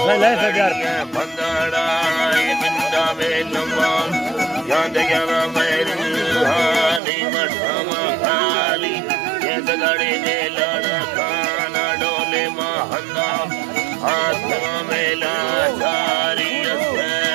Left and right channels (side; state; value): left; drops out; at 7.0 s